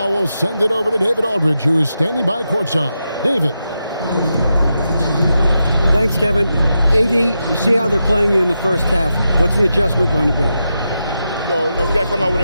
we'll send it over to David Aldridge, who is standing by courtside. David. Thanks, Kevin. AD, you see how they're playing you in the first half. What's the adjustment going to be? So, we got to come out with a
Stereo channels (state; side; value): inverted; both; correlation -0.87